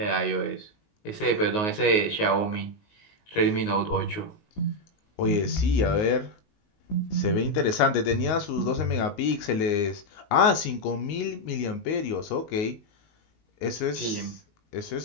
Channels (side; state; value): right; late; 19 ms